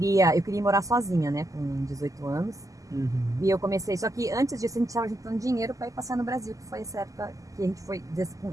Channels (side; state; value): left; late; 0.16 ms